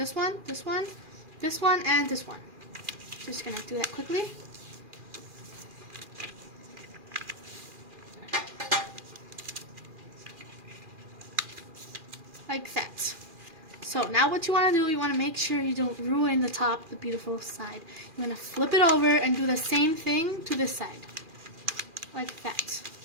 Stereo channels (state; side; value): late; left; 2.4 ms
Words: one, this one, this one, and this one. Just going to do that quickly. Like that. So now what you want to do, you want to make sure you don't ruin the top, the beautiful side. You want to flip it over and do the same thing to this side. Like that.